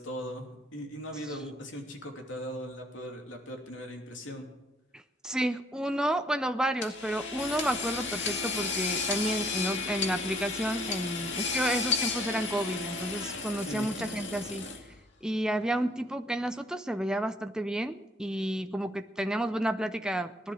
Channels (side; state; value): both; normal; correlation 0.64